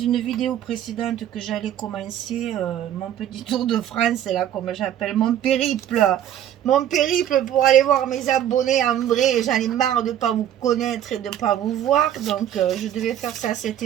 vidéo précédente que j'allais commencer mon petit tour de France, là, comme j'appelle, mon périple pour aller voir mes abonnés en vrai. J'en ai marre de ne pas vous connaître et de ne pas vous voir, donc je devais faire ça cet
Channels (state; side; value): quieter; left; 11.0 dB